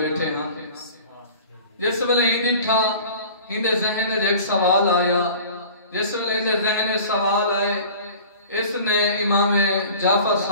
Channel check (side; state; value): both; inverted; correlation -0.43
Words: ہاں. جس ویلے ہندی تھا ہندے ذہن وچ ایک سوال آیا. جس ویلے ہندے ذہن وچ سوال آئے اس نے امام جعفر